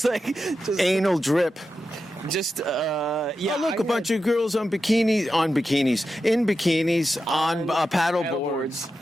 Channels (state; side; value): normal; both; correlation 0.90